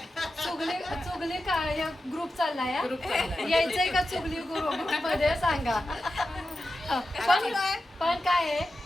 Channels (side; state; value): both; normal; correlation 0.91